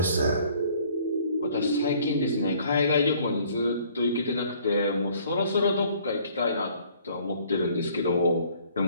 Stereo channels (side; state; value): both; inverted; correlation -0.58